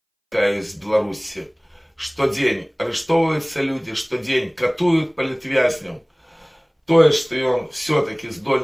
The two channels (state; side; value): identical; both; correlation 1.00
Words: такая из Беларуси, что день арестовываются люди, что день катуют политвязням, то, что он все-таки